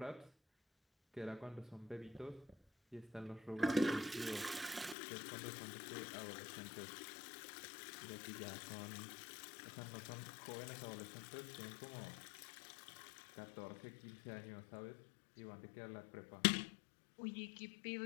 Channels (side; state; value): right; drops out; at 5.0 s